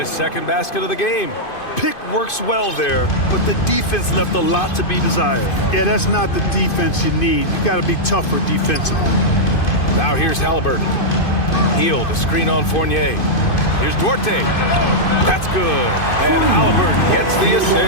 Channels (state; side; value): late; right; 2.5 ms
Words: second basket of the game. Pick works well there, but the defense left a lot to be desired. Yeah, that's not the defense you need. You got to be tougher defensively. Now here's Halliburton. Heel to screen on Fournier. Here's Duarte. That's good. And Halliburton gets the